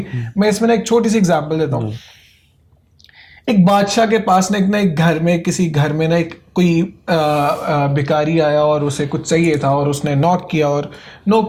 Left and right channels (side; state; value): both; identical; correlation 1.00